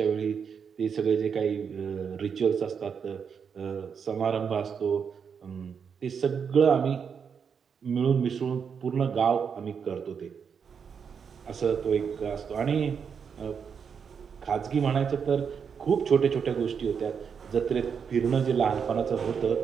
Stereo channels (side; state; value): left; quieter; 6.7 dB